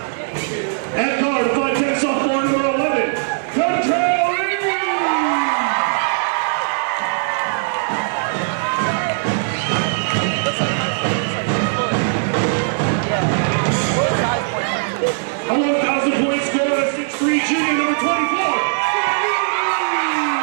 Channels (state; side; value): silent; left; digital silence